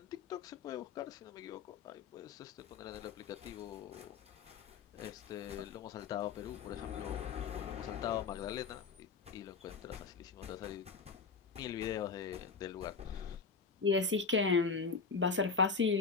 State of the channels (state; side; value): quieter; right; 5.2 dB